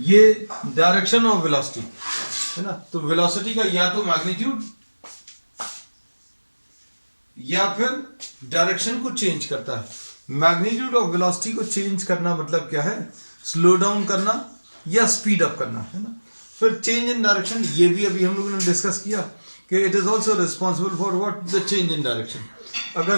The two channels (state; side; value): inverted; both; correlation -1.00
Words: डायरेक्शन ऑफ वेलोसिटी है ना. तो वेलोसिटी का या तो मैग्नीट्यूड या फिर डायरेक्शन को चेंज करता है. मैग्नीट्यूड ऑफ वेलोसिटी को चेंज करना मतलब क्या है, स्लो डाउन करना या स्पीड अप करना है ना. फिर चेंज इन डायरेक्शन, ये भी अभी हम लोगों ने डिस्कस किया कि it is also responsible for what, the change in direction. अगर